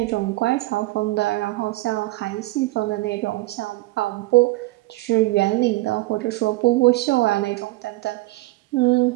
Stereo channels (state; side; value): quieter; left; 20.1 dB